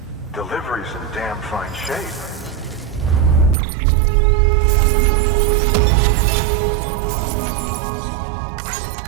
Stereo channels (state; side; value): drops out; left; at 3.6 s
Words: Delivery's in damn fine shape.